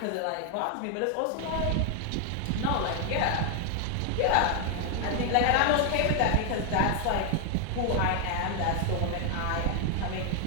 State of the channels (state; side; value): different; both; correlation 0.00